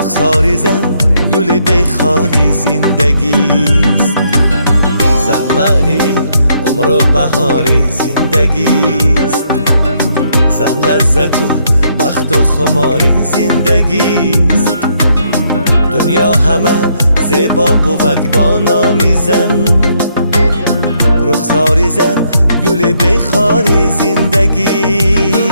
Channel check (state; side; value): inverted; both; correlation -0.73